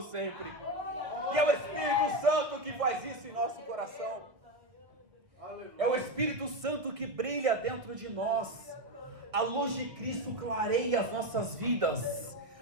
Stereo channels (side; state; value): left; late; 1.6 ms